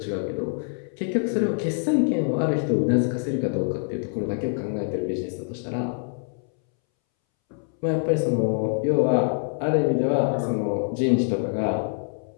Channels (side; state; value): right; silent; 62 dB below the other